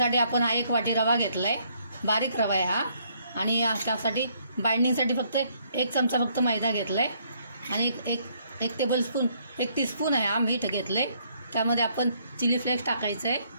आपण हा 1 वाटी रवा घेतला आहे, बारीक रवा आहे हा। आणि त्यासाठी बाइंडिंगसाठी फक्त 1 चमचा फक्त मैदा घेतला आहे आणि एक टेबलस्पून 1 टीस्पून आहे हा मीठ घेतलं आहे। त्यामध्ये आपण चिली फ्लेक्स टाकायचं आहे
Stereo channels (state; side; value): inverted; both; correlation -0.68